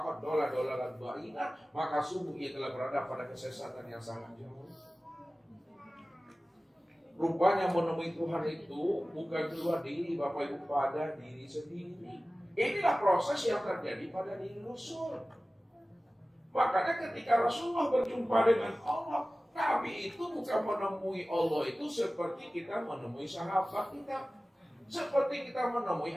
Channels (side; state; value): both; normal; correlation 0.97